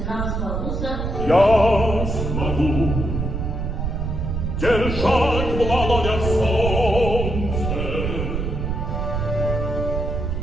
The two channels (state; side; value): noise; right; rumble, 2 dB below the sound